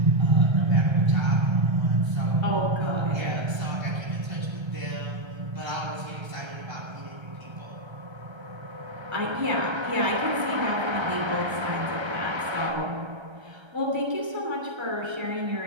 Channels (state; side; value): late; left; 1.3 ms